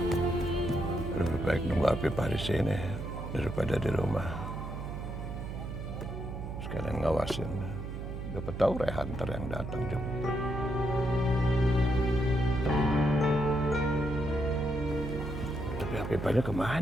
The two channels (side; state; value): right; noise; hum, 7 dB below the sound